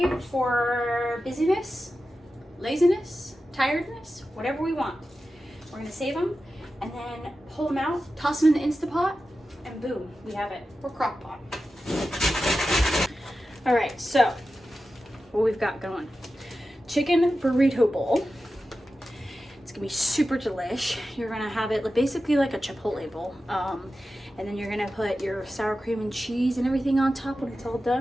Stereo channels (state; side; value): normal; both; correlation 0.92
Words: for busyness, laziness, tiredness, whatever we want. We're gonna save them and then pull them out, toss them in the Instapot, and boom, we have it. Or crock pot. All right, so what we've got going. Chicken burrito bowl. It's gonna be super delish. You're gonna have it basically like a Chipotle bowl. And then you're gonna put your sour cream and cheese and everything on top when it's all